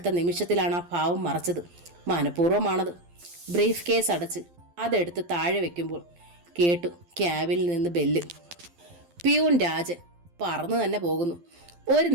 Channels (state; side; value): late; left; 12 ms